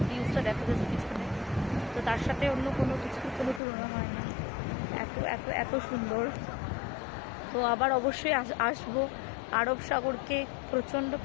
ভিউজটা, দেখো যাচ্ছে পিছনে, তো তার সাথে অন্য কোনো কিছুর কোনো তুলনা হয় না। এত এত এত সুন্দর। তো আবার অবশ্যই আসবো। আরব সাগরকে প্রচণ্ড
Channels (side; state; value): right; drops out; at 3.6 s